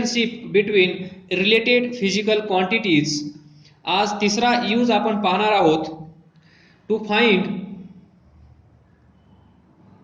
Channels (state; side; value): identical; both; correlation 1.00